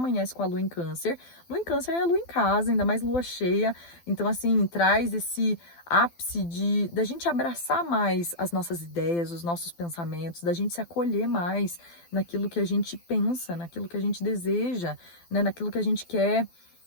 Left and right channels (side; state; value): right; late; 12 ms